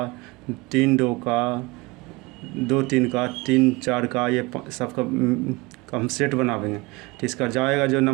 3 2 का, 2 3 का, 3 4 का, ये सबका हम सेट बनावेंगे। तो इसका जाएगा जो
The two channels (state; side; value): quieter; left; 24.0 dB